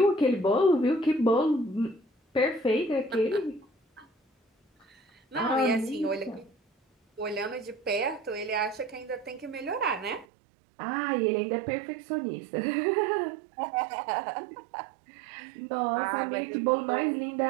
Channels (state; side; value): drops out; left; at 10.2 s